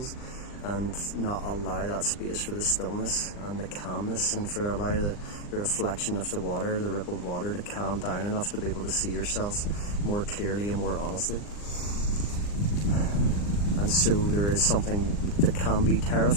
and not allow that space for the stillness and the calmness, and for allow the reflection of the water, the rippled water, to calm down enough to be able to see yourself more clearly and more honestly. And so there is something that can be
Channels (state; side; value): late; right; 39 ms